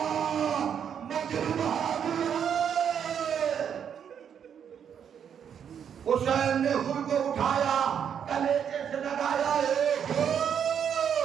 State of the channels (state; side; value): quieter; left; 8.2 dB